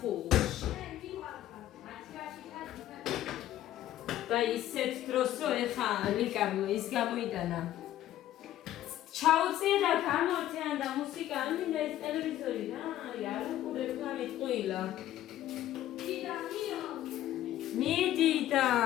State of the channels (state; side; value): quieter; right; 13.1 dB